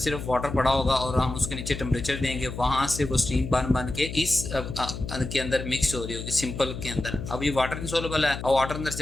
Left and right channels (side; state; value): left; noise; hum, 8 dB below the sound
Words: वाटर पड़ा होगा, और हम उसके नीचे टेम्परेचर देंगे, वहां से वो स्टीम बन के इस के अंदर मिक्स हो रही होगी सिंपल के अंदर। अब ये वाटर इनसोल्युबल है, और वाटर अंदर